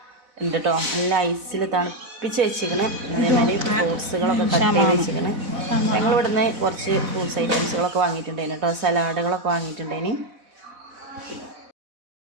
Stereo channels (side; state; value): left; late; 4.0 ms